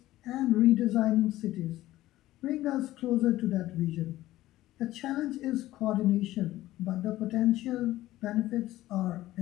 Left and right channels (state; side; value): quieter; right; 15.7 dB